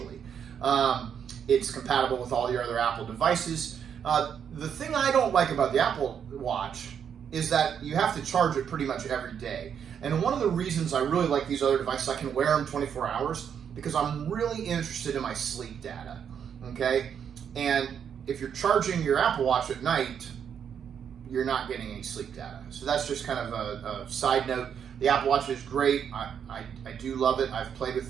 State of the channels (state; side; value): quieter; left; 8.0 dB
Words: It's compatible with all your other Apple devices. The thing I don't like about the Apple Watch is that you have to charge it pretty much every day. And one of the reasons I really like these other devices, I can wear them 24 hours because I'm really interested in my sleep data, okay? And if you're charging your Apple Watch at night, you're not getting any sleep data. So that's just kind of a side note. The Apple Watch is great. I do love it. I've played with